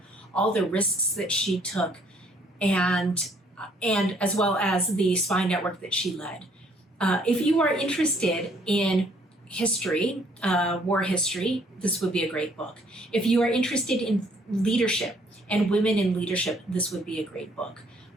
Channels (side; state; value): both; normal; correlation 0.64